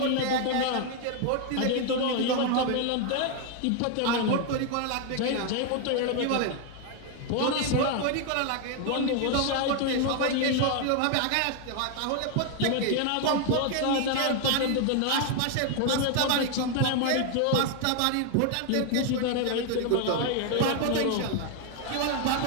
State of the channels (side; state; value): both; different; correlation 0.00